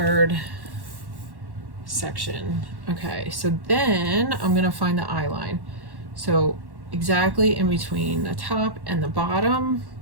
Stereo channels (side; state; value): left; late; 1.1 ms